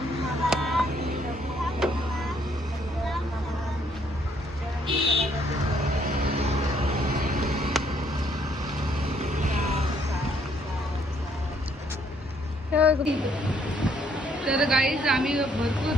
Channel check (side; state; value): both; normal; correlation 0.67